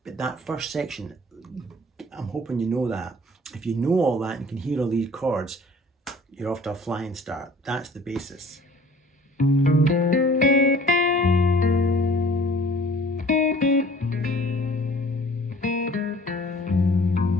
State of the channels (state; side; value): normal; both; correlation 0.51